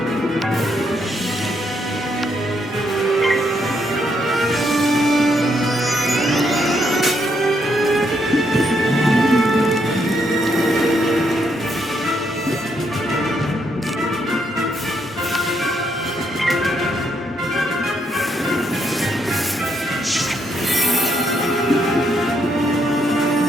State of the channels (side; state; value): both; normal; correlation 0.75